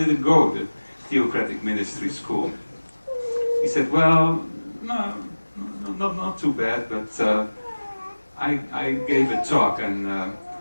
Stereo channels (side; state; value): both; inverted; correlation -1.00